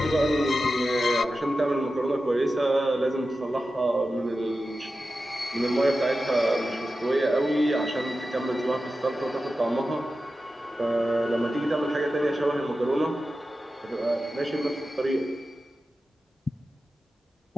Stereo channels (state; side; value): normal; both; correlation 0.93